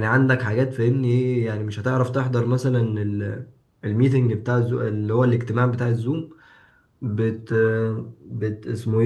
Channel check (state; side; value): identical; both; correlation 1.00